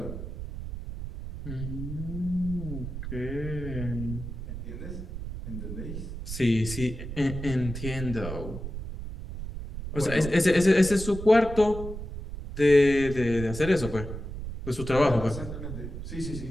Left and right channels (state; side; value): noise; right; rumble, 8 dB below the sound